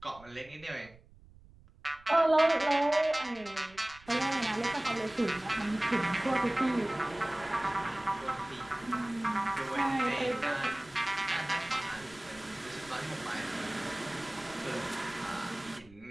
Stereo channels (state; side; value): noise; right; rumble, 24 dB below the sound